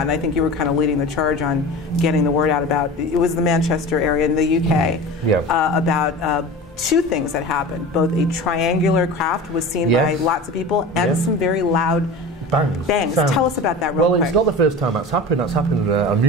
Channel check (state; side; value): normal; both; correlation 0.33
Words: and I think you were kind of leading the charge on getting the word out about, it was the Manchester area in the UK, about 2 things that happened. Both a triangular craft was seen by lots of people, and some very loud bangs. Tell us about that real quick. Well, it's not the first time that's happened. That's happened on